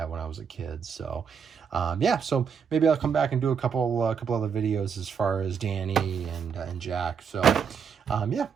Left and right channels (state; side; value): quieter; left; 6.7 dB